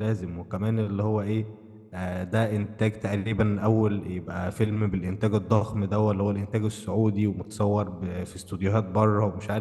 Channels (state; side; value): identical; both; correlation 1.00